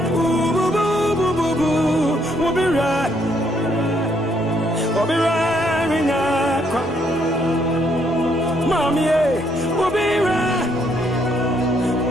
we'll be right. We'll be wearing a Mommy, we'll be right.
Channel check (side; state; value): both; normal; correlation 0.71